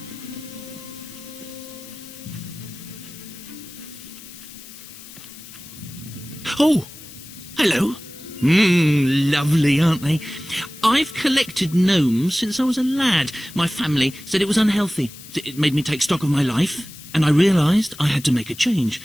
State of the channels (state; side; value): noise; left; hiss, 17 dB below the sound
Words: Oh, hello. Lovely, aren't they? I've collected gnomes since I was a lad. My family said it was unhealthy. It made me take stock of my life, and I realised I had to make a change.